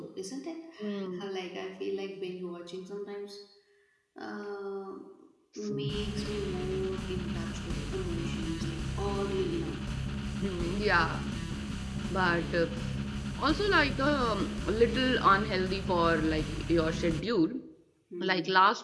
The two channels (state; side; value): identical; both; correlation 1.00